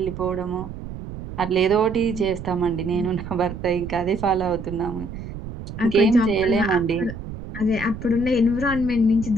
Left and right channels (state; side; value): noise; right; rumble, 10 dB below the sound